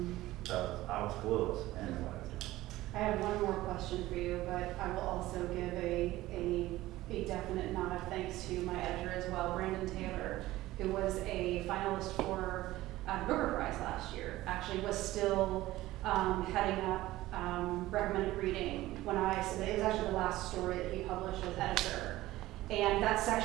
So I was clueless in what I was doing. I have one more question for you, but I will also give a definite nod of thanks to my editor as well, Brandon Taylor, who was a finalist for the Booker Prize last year. Actually was still heading up recommended reading when I submitted. It was actually the last story that he published as editor. And that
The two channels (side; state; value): left; quieter; 16.8 dB